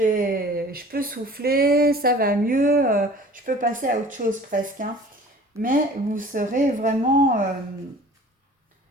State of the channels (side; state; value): both; normal; correlation 0.46